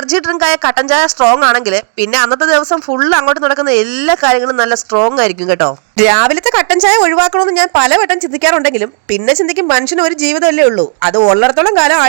ഡ്രിങ്ക് ആയ കട്ടൻ ചായ സ്ട്രോങ് ആണെങ്കിൽ പിന്നെ അന്നത്തെ ദിവസം ഫുൾ അങ്ങോട്ട് നടക്കുന്ന എല്ലാ കാര്യങ്ങളും നല്ല സ്ട്രോങ് ആയിരിക്കും കേട്ടോ. രാവിലത്തെ കട്ടൻ ചായ ഒഴിവാക്കണമെന്ന് ഞാൻ പലവട്ടം ചിന്തിക്കാറുണ്ടെങ്കിലും പിന്നെ ചിന്തിക്കും മനുഷ്യന് ഒരു ജീവിതമല്ലേ ഉള്ളൂ. അത് ഉള്ളിടത്തോളം കാലം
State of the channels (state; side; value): silent; left; 64 dB below the other